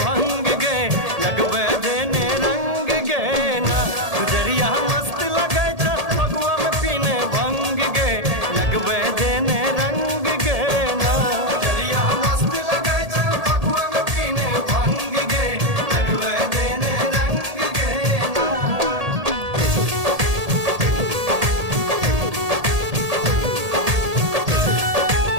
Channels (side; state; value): left; late; 1.8 ms